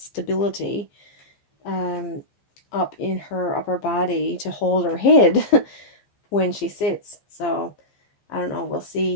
up in her upper body to hold her head when she sits. So I don't know, we'll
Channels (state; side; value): late; right; 15 ms